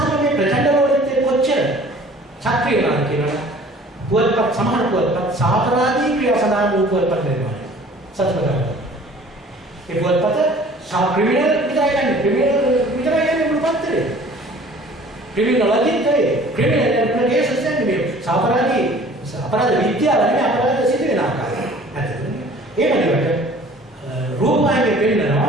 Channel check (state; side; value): normal; both; correlation 0.50